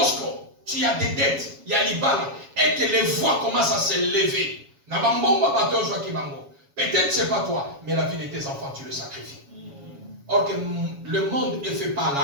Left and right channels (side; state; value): left; late; 7.2 ms